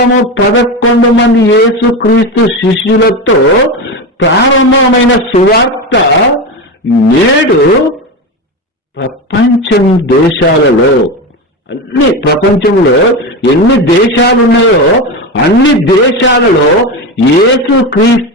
మంది యేసుక్రీస్తు శిష్యులతో ప్రారంభమైన సువార్త నేడు ప్రపంచంలో ఎన్ని దేశాలు ఉన్నాయో అన్ని దేశాలలో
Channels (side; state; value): both; normal; correlation 0.19